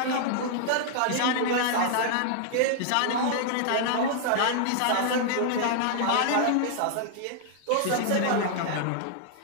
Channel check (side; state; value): both; different; correlation -0.01